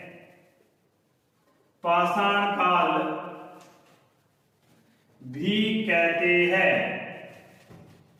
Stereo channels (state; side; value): identical; both; correlation 1.00